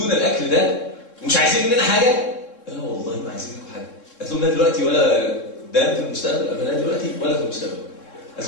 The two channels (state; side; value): late; right; 3.7 ms